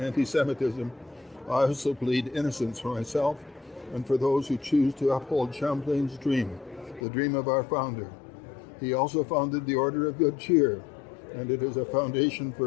anti-Semitism, I also plead innocence for myself and for those who choose to uphold Champlain's dream, the dream of our founder. He also founded the Order of Good Cheer, and it is a foundation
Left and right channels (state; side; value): drops out; right; at 7.0 s